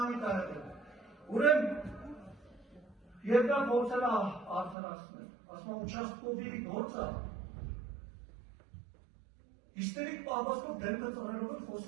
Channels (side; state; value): left; drops out; at 4.8 s